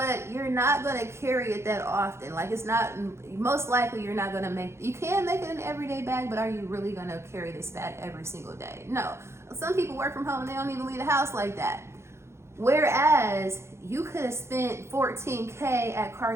you're not going to carry it that often. Like it's not, most likely you're not going to you can make it an everyday bag, but are you really going to carry this bag every single day? No. Some people work from home and they don't even leave the house like that. Whereas you could have spent $14K at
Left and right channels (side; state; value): left; late; 0.13 ms